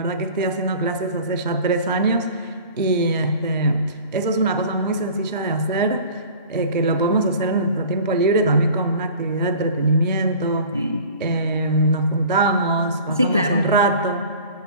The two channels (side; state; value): both; inverted; correlation -0.43